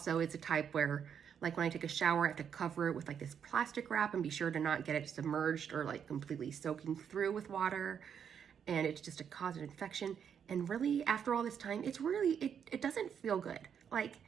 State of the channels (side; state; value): left; quieter; 7.9 dB